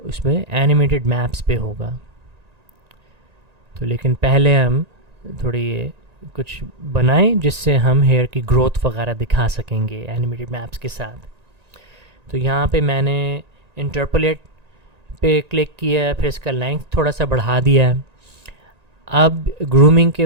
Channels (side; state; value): left; late; 1.9 ms